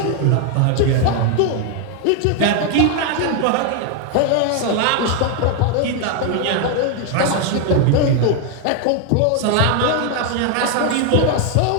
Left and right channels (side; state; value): both; different; correlation 0.01